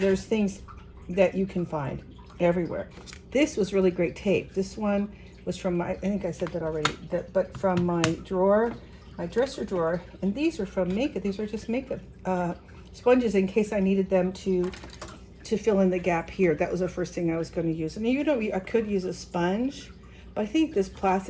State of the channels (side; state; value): both; identical; correlation 1.00